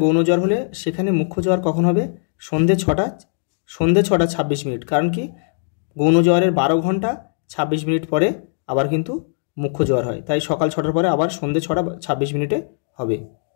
গৌণ জ্বর হলে সেখানে মুখ্য জ্বর কখন হবে? সন্ধে 6টা 26 মিনিট। কারণ কি? গৌণ জ্বরের 12 ঘন্টা 26 মিনিট পরে আবার কিন্তু মুখ্য জ্বর হয়, তাই সকাল 6টার পরে আবার সন্ধে 6টা 26 মিনিটে হবে।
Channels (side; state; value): right; silent; digital silence